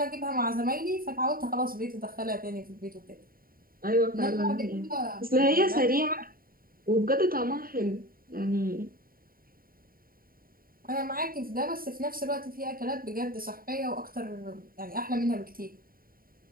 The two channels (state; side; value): late; left; 0.42 ms